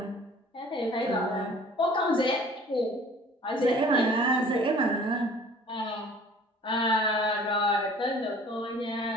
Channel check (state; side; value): normal; both; correlation 0.49